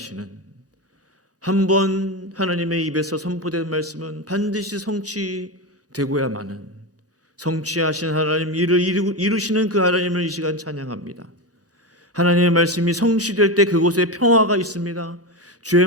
한번 하나님의 입에서 선포된 말씀은 반드시 성취되고야 마는 성취하신 하나님, 이를 이루시는 그 하나님을 이 시간 찬양합니다. 하나님의 말씀이 성취될 때 그곳에 평화가 있습니다. 주의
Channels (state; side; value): normal; both; correlation 0.17